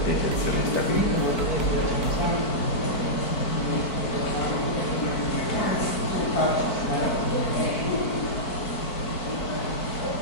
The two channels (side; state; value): right; late; 4.5 ms